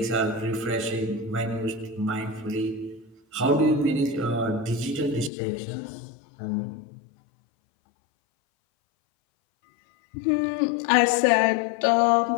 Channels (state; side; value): drops out; right; at 5.3 s